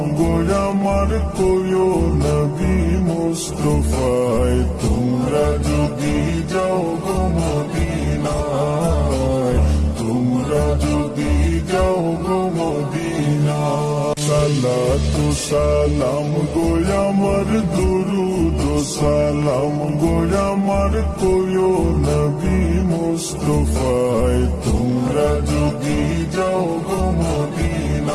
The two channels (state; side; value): identical; both; correlation 1.00